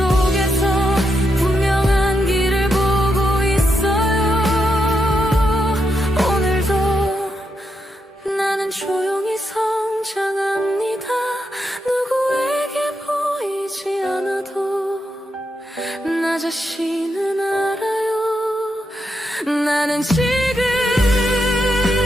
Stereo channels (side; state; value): both; normal; correlation 0.83